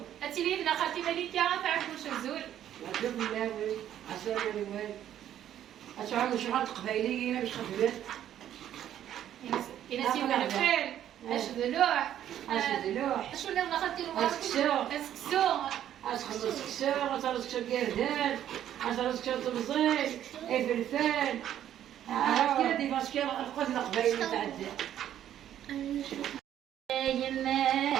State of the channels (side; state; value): left; quieter; 11.0 dB